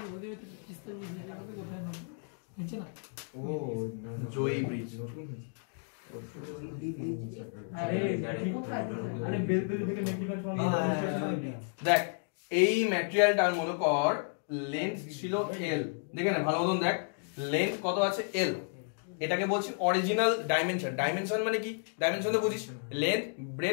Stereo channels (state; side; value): silent; right; 56 dB below the other